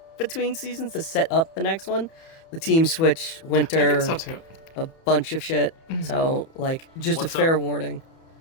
between seasons to set up the next one. The team switch, Winter, I think so too. a bunch of shit. So like just What's a fair up? warning.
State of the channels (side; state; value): right; late; 31 ms